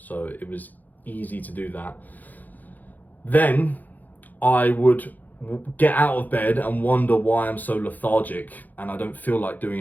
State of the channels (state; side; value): late; right; 0.083 ms